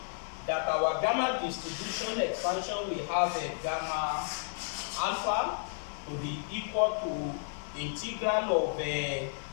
that our gamma distribution expansion, we have a gamma alpha to be equal to integral of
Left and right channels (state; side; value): silent; right; 55 dB below the other